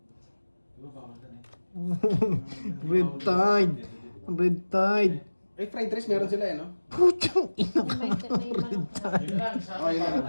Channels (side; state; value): both; inverted; correlation -1.00